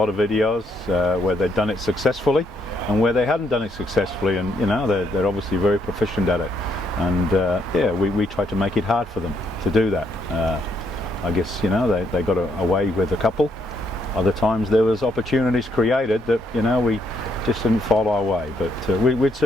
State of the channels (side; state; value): both; normal; correlation 0.74